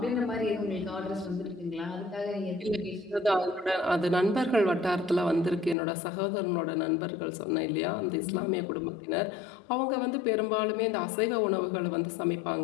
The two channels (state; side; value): drops out; right; at 5.8 s